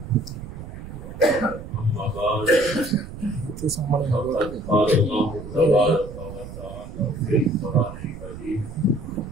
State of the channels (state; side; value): noise; right; rumble, 12 dB below the sound